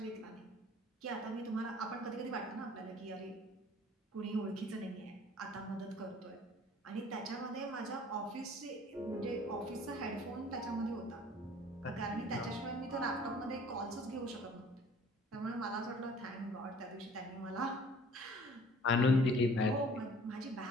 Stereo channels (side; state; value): both; normal; correlation 0.51